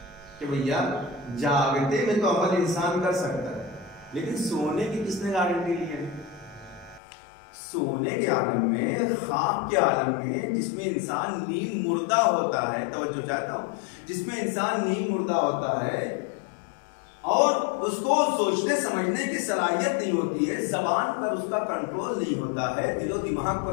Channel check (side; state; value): right; drops out; at 7.0 s